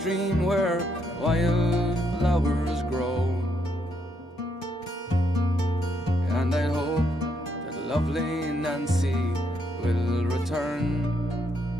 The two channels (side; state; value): both; normal; correlation 0.76